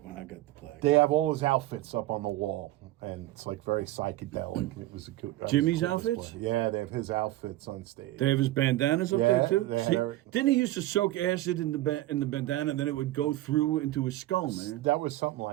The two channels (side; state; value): left; quieter; 16.2 dB